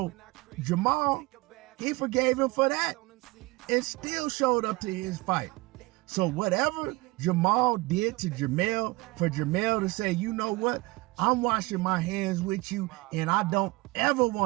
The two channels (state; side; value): quieter; left; 23.0 dB